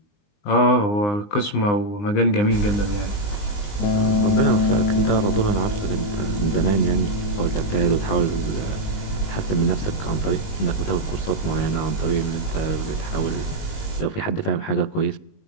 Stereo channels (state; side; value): late; right; 19 ms